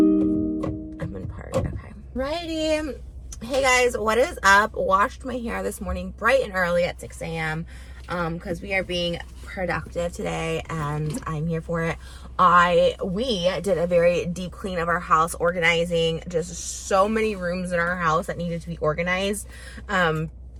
I'm in park. Okay. Righty. Hey guys, what is up? Washed my hair this morning bright and early at 6 a.m. Because we are being productive today and I'm here for it. We did a very deep clean of our house, organizing just so many rooms in our house that needed to be organized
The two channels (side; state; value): both; identical; correlation 1.00